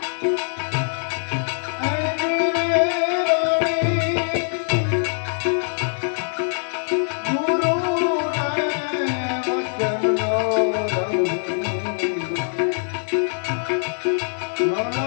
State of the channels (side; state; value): right; silent; digital silence